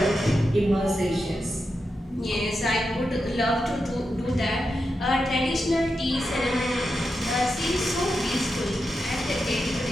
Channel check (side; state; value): both; normal; correlation 0.88